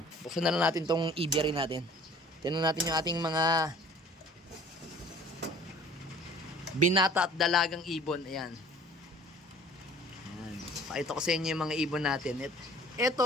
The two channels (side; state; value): both; normal; correlation 0.49